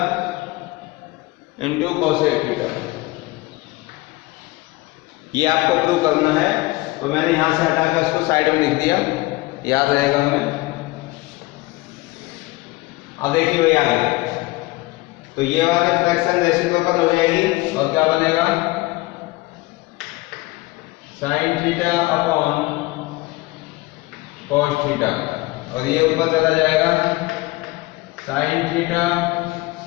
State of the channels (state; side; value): quieter; right; 21.3 dB